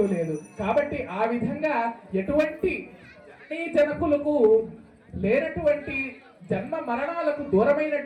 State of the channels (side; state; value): both; identical; correlation 1.00